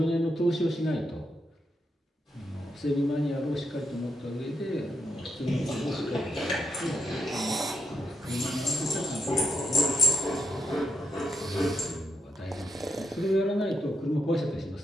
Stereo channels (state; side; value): normal; both; correlation 0.82